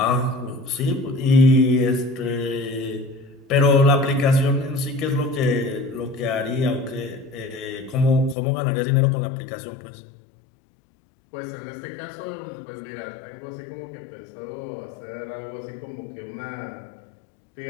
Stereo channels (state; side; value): drops out; right; at 8.3 s